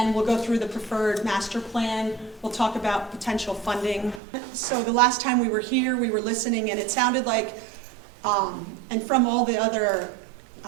we'll go through the preferred master plan. We'll talk about potential funding. So the last time we were here, we were listening, and it sounded like, and from all the other,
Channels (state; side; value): drops out; left; at 4.2 s